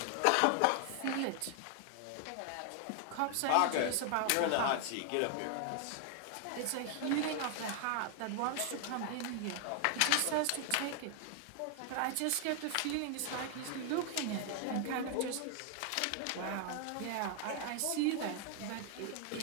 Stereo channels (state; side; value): different; both; correlation 0.00